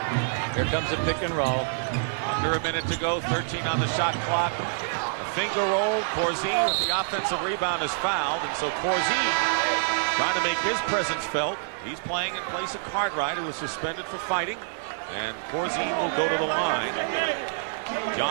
Here comes a pick and roll. Under a minute to go, 13 on the shot clock. A finger roll. Corzine with the offensive rebound is fouled, and so Corzine trying to make his presence felt. He's playing in place of Cartwright, who was suspended for fighting, and Corzine will go to the line.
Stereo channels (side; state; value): left; silent; digital silence